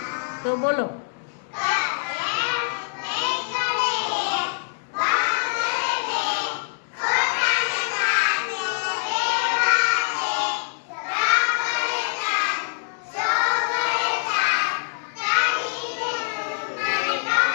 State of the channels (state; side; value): silent; right; 62 dB below the other